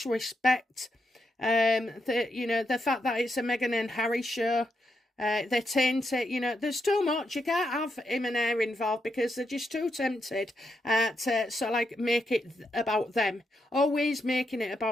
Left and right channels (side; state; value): both; normal; correlation 0.82